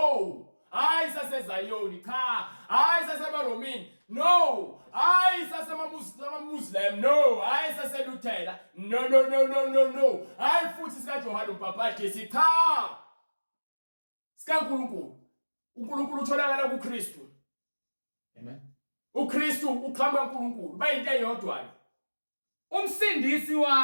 Hayi saseZayoni cha, hayi saseBaromini no, hayi sasemaMuslim no, hayi saseLuthela no, hayi futhi sikaJohane uMbhaphathi cha. SikaNkulunkulu uNkulunkulu utholakala kuKristu. Amen. uKristu uqhamuka kuNkulunkulu bayinto eyodwa. Umsindisi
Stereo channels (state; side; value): inverted; both; correlation -1.00